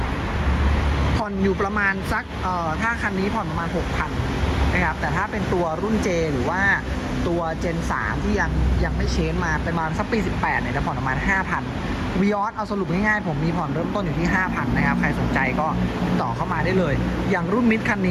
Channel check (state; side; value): identical; both; correlation 1.00